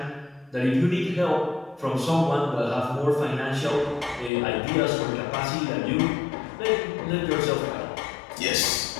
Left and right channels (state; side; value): drops out; right; at 4.3 s